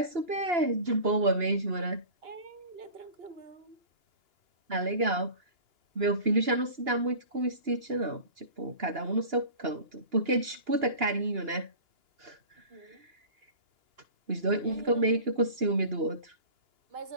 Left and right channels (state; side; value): late; left; 2.9 ms